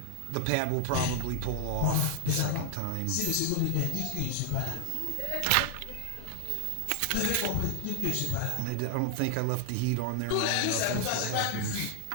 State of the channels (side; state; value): both; different; correlation 0.00